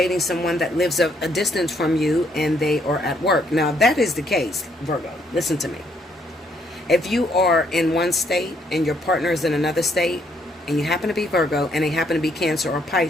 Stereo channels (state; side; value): normal; both; correlation 0.70